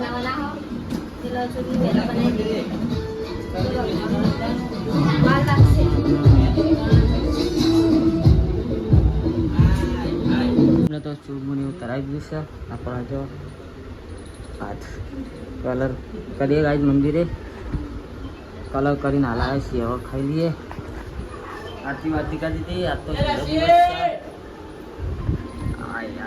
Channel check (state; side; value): identical; both; correlation 1.00